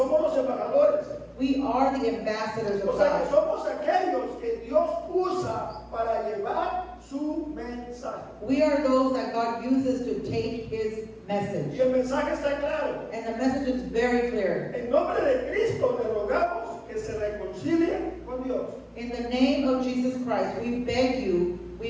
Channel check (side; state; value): both; identical; correlation 1.00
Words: los embajadores. we are the ambassadors of O sea, que God. somos aquellos que Dios usa para llevar su mensaje. We are those that God uses to take His Y message. el mensaje está claro. And the message is very clear. En nombre de Cristo le rogamos que se reconcilien con Dios. In the name of Jesus Christ, we beg you